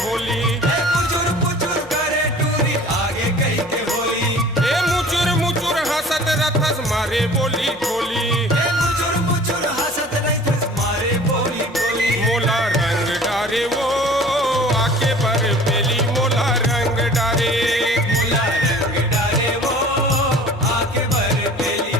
होली। पुचुर पुचुर करे टूरी आगे कही के होली। ए मुचुर मुचुर हंसत रथस मारे बोली ठोली। मुचुर मुचुर हंसत रथस मारे बोली बोली। मोला रंग डारे वो आके बर पेली मोला रंग डारे। मोला रंग डारे वो आके बर पेली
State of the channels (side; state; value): both; normal; correlation 0.46